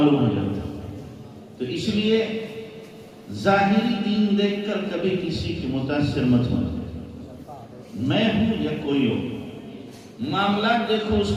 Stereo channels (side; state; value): both; identical; correlation 1.00